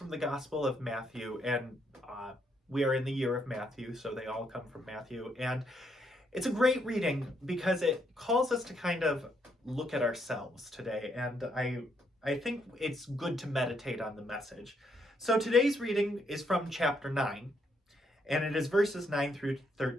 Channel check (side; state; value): both; normal; correlation 0.74